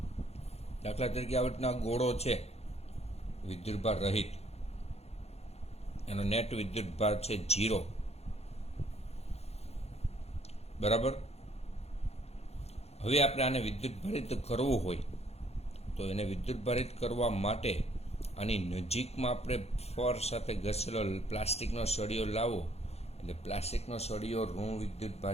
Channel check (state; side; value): late; right; 0.30 ms